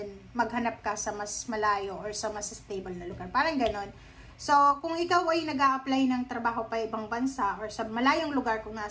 maghanap ka sa mas malayo or sa mas stable na lugar. Parang ganon. So, kung ikaw ay nag-a-apply ng trabaho pa ibang bansa or sa malayong lugar kung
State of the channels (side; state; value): both; identical; correlation 1.00